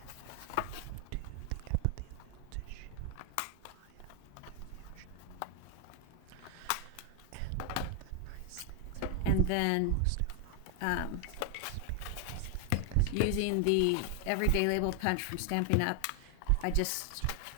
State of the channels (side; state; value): both; different; correlation 0.00